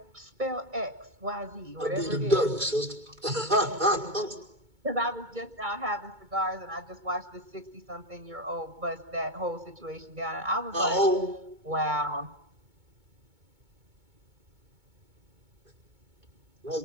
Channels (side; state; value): left; late; 2.2 ms